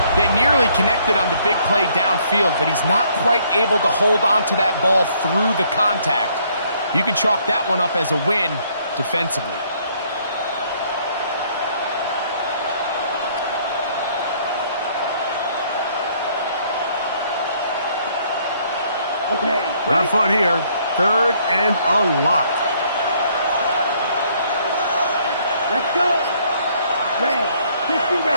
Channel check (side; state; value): both; inverted; correlation -0.65